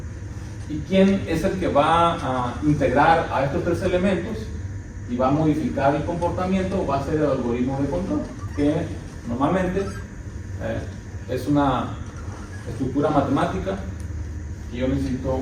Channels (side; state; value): both; identical; correlation 1.00